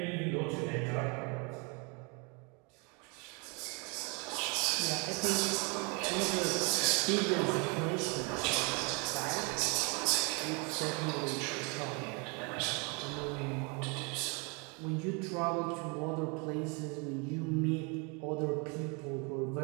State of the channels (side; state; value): left; quieter; 32.1 dB